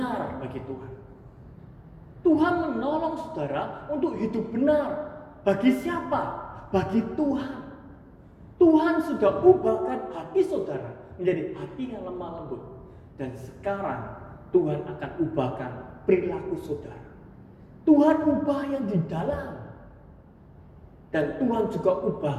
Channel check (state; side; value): identical; both; correlation 1.00